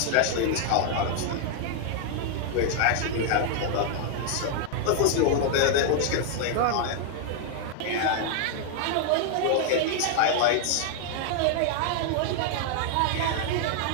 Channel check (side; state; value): both; different; correlation 0.00